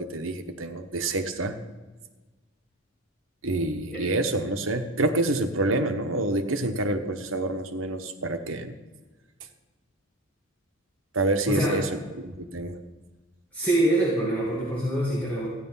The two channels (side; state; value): both; normal; correlation 0.31